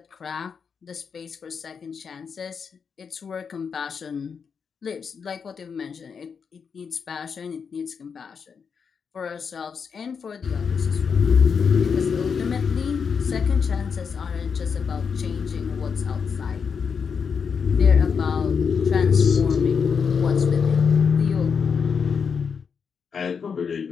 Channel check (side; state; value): right; quieter; 6.2 dB